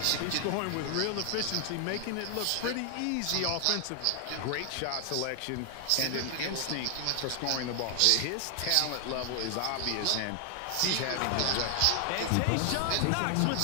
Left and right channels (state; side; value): different; both; correlation 0.00